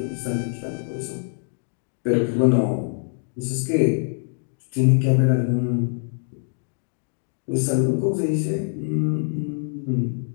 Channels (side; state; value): right; silent; digital silence